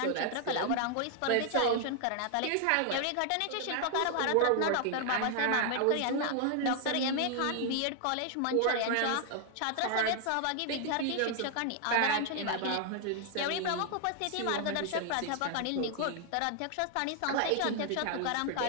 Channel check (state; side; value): different; both; correlation 0.00